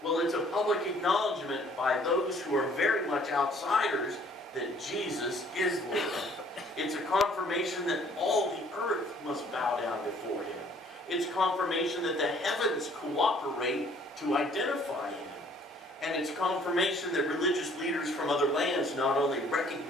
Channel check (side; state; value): both; normal; correlation 0.58